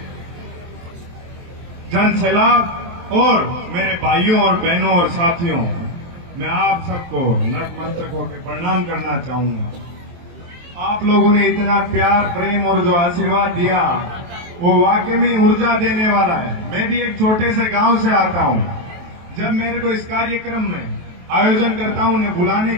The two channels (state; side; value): late; left; 23 ms